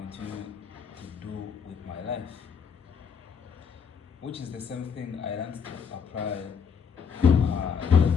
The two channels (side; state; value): right; quieter; 6.5 dB